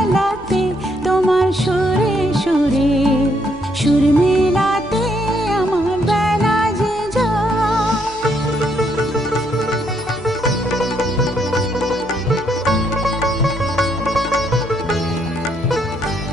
তোমার সুরে সুরে সুর মেলাতে আমার বেলা যে যায়।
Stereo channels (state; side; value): noise; left; hum, 21 dB below the sound